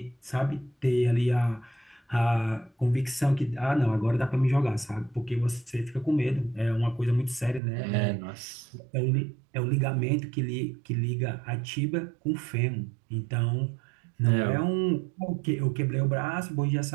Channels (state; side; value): drops out; left; at 7.6 s